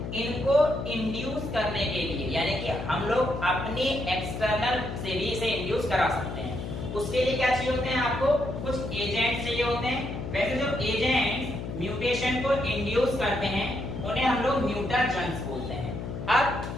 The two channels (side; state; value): left; noise; hum, 6 dB below the sound